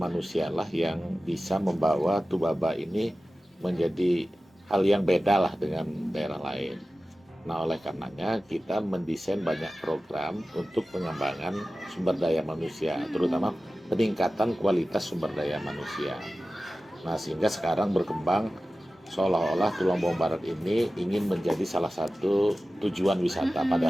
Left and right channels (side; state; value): both; normal; correlation 0.95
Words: yang bisa membawa Tubaba ini menjadi hal yang beda lah dengan daerah lain. Nah, oleh karenanya kita mendesain banyak program untuk pengembangan sumber daya manusia, terutama peningkatan kualitas sumber daya manusia. Nah, sehingga sekarang berkembang seolah-olah Tulang Bawang Barat ini ingin menjadi salah satu tujuan wisata.